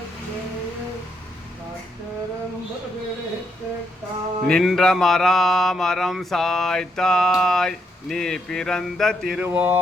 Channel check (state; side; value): normal; both; correlation 0.77